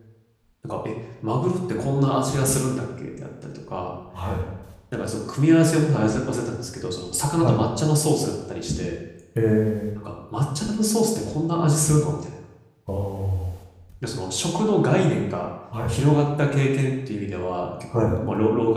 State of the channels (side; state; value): both; identical; correlation 1.00